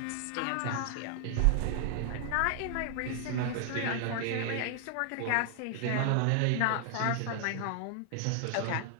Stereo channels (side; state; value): both; different; correlation 0.00